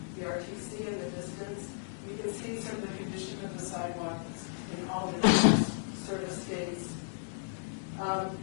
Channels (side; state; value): right; silent; digital silence